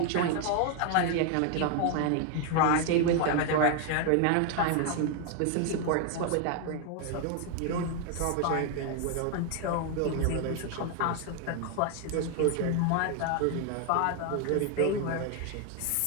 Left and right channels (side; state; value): both; different; correlation 0.00